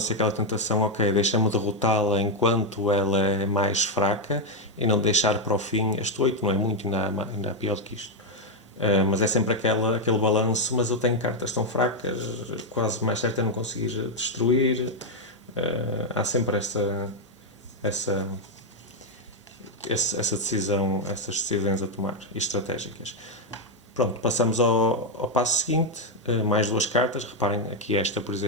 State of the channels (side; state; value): both; normal; correlation 0.02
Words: aquela tentação, ok, deixa-me derrotá-la enquanto ela é mais fraca e não deixar para o fim. Este 8 não é muito, ainda há pior do que isto. Mas é sempre aquele balanço, mas eu tenho cartas tão fracas, quase mais certo é não conseguir destruir. Há sempre essa decisão, essas decisões a tomar, e estratégicas. Pronto, passamos ao passo seguinte, mais 2 cartas. Reparem aqui esta, por